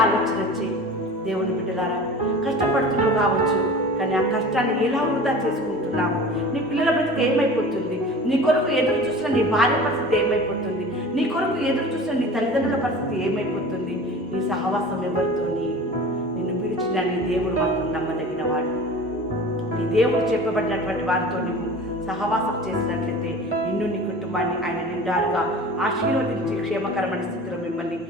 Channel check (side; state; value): both; normal; correlation 0.38